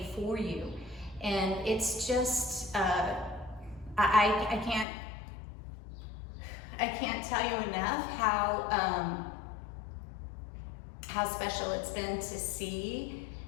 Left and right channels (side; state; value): right; drops out; at 4.9 s